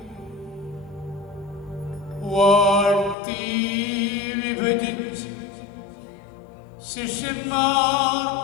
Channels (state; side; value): drops out; right; at 3.2 s